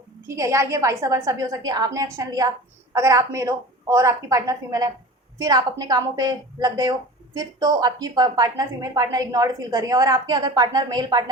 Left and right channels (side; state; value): both; normal; correlation 0.36